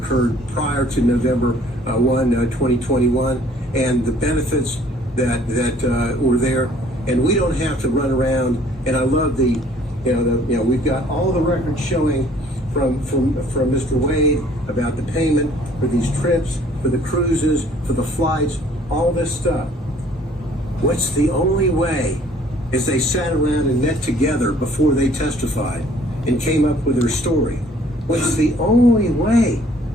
prior to November 1, 2021, and the benefits that were there, and we don't have to run around. And I love we've got all the records showing from Mr. Wade about the payment for these trips, for the cruises, for the flights, all this stuff. What's the only way, as they sat around and met together before they testified and came up with their story, what's the only way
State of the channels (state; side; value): normal; both; correlation 0.57